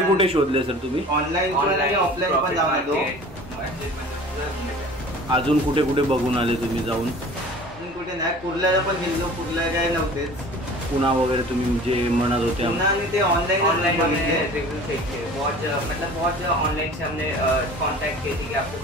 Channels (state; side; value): normal; both; correlation 0.43